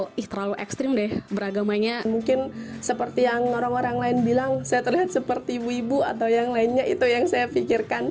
terlalu ekstrim deh beragamanya. Mungkin seperti yang orang-orang lain bilang saya terlihat seperti ibu-ibu atau yang lainnya, itu yang saya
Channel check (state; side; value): identical; both; correlation 1.00